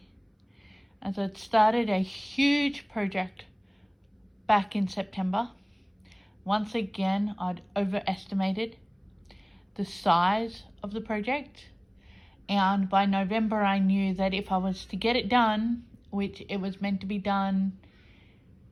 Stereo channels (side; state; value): both; identical; correlation 1.00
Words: as I'd started a huge project back in September. Once again, I'd overestimated the size of the project. And by November, I knew that if I was to get it done, which it was meant to be done